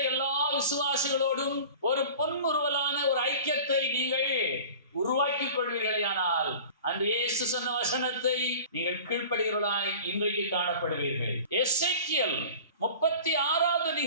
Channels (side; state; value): both; inverted; correlation -0.40